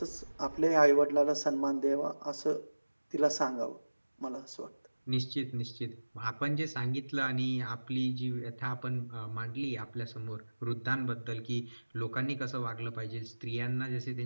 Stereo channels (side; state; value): both; inverted; correlation -1.00